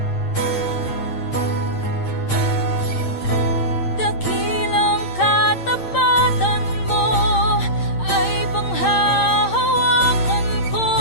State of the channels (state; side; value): late; right; 8.8 ms